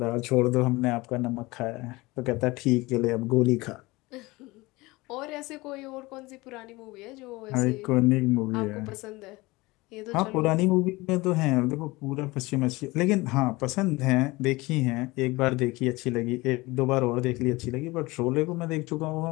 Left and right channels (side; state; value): right; quieter; 21.9 dB